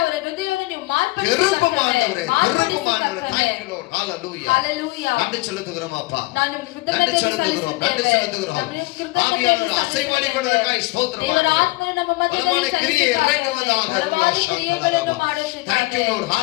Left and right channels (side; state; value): right; quieter; 22.9 dB